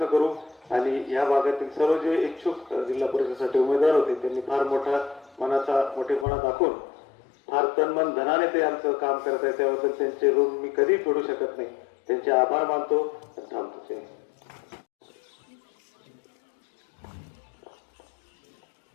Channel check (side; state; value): right; drops out; at 6.2 s